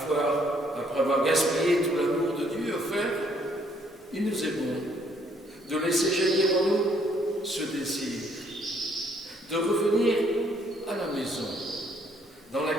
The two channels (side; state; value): both; normal; correlation 0.67